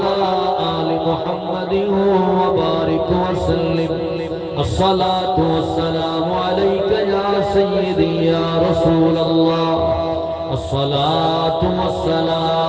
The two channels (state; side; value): identical; both; correlation 1.00